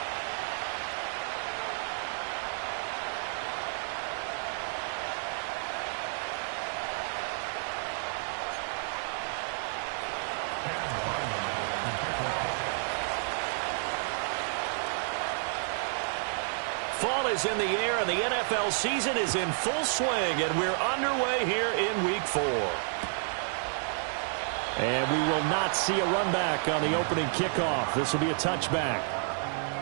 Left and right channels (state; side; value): silent; left; 57 dB below the other